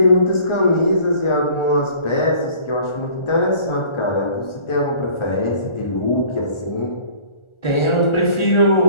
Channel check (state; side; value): late; right; 1.4 ms